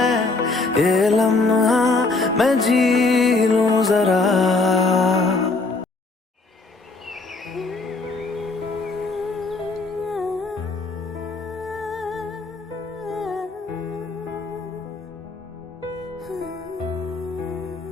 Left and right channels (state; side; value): quieter; right; 3.6 dB